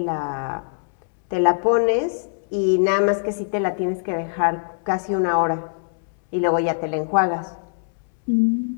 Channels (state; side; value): silent; right; 64 dB below the other